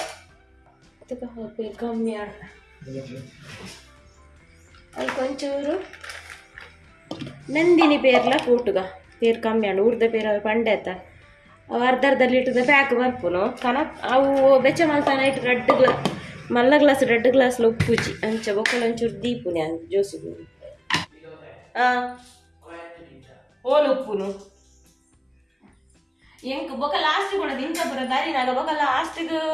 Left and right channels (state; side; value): identical; both; correlation 1.00